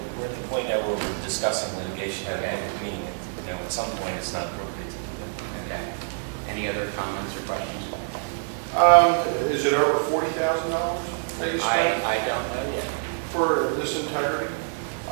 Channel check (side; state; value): left; silent; digital silence